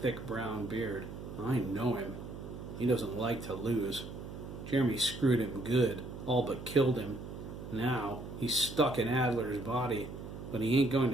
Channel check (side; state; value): right; noise; hum, 10 dB below the sound